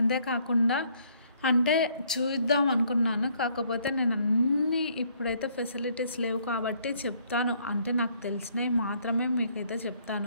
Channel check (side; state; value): both; inverted; correlation -0.65